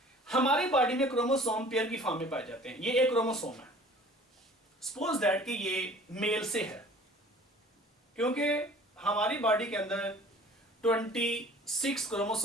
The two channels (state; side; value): normal; both; correlation 0.49